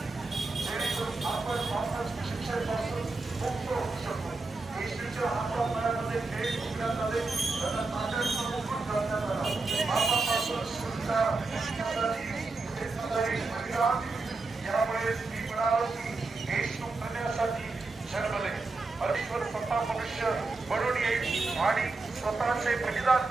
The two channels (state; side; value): quieter; left; 3.6 dB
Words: जेणेकरून आपण वापस शिक्षेपासून मुक्त होऊ शकतो. येशूच्या हातापायामध्ये खेळ शिकण्यात आले, त्यांना ताकदीचा मुकुट घालण्यात आला. पापापासून सुटका यामुळे मी म्हणालो की येशू करण्यासाठी जन्मले. परमेश्वर स्वतः मनुष्य बनून येईल आणि स्वतःचे बलिदान